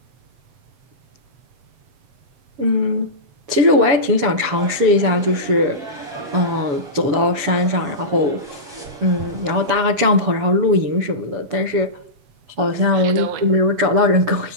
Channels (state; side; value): late; left; 7.1 ms